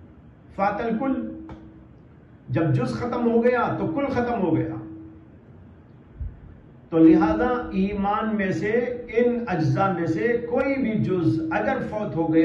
فات الکل، جب جز ختم ہو گیا تو کل ختم ہو گیا۔ تو لہذا ایمان میں سے ان اجزاء میں سے کوئی بھی جز اگر فوت ہو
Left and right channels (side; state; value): both; identical; correlation 1.00